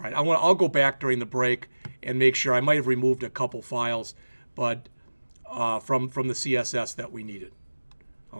right. I'll go back during the break and make sure. I might have removed a couple files, but from the CSS that we needed.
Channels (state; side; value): inverted; both; correlation -1.00